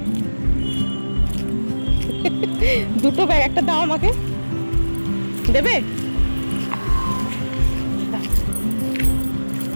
দুটো ব্যাগ, একটা দাও আমাকে, দেবে?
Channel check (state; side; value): inverted; both; correlation -1.00